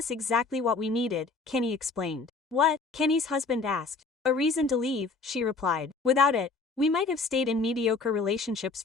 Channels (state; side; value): quieter; right; 4.0 dB